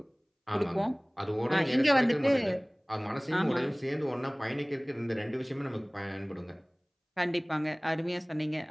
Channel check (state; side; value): identical; both; correlation 1.00